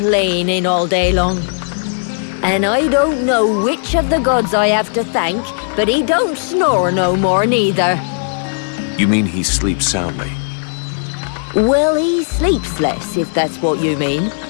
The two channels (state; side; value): silent; right; digital silence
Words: all day long. And I don't know which of the gods I have to thank, but he don't snore no more neither. You mean he sleeps soundly? Well, he sleeps less, if that's what you mean.